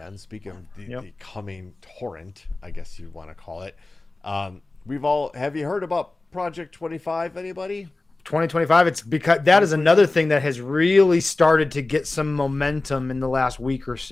and speaking of the coming torrent, I guess you'd want to call it, have you heard about Project 25? Anybody? 2025. It's because that is another thing that has really started to get some momentum in the last week or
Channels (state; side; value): quieter; right; 3.1 dB